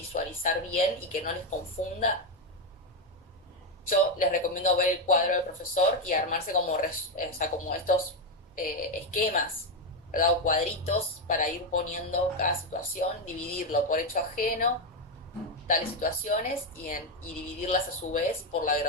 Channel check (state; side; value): normal; both; correlation 0.06